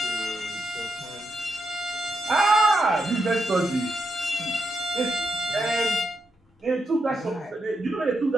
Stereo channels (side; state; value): both; normal; correlation 0.83